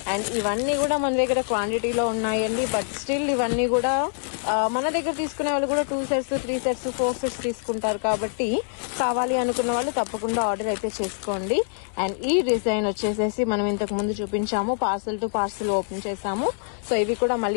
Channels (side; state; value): right; silent; 61 dB below the other